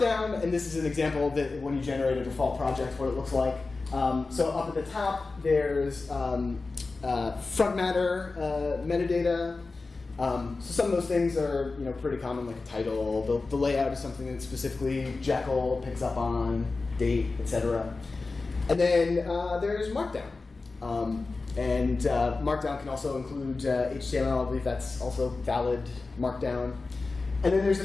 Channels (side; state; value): right; quieter; 3.8 dB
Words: and this is an example that when you generate a default project, what it looks like. So up at the top, there's front matter metadata. So some of those things are pretty common, like a title. The layout is something that specifically Jekyll picks up on, date, etc. And then there's Markdown. And Markdown can also include HTML. I believe that's also valid Markdown. And then there's a